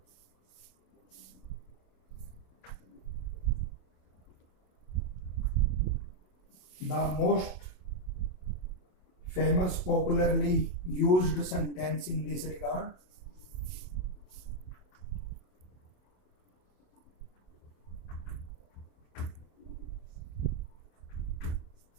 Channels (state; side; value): late; right; 27 ms